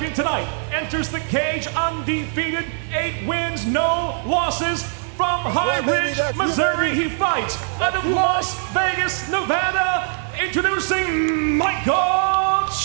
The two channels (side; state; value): left; silent; digital silence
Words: tonight enters the cage undefeated, 8 wins, no losses. From High Ridge, Missouri, he fights out of Las Vegas, Nevada. Introducing Michael